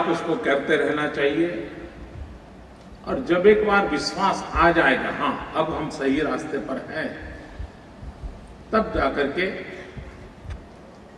उसको करते रहना चाहिए। और जब एक बार विश्वास आ जाएगा, हाँ अब हम सही रास्ते पर हैं, तब जाकर के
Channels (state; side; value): identical; both; correlation 1.00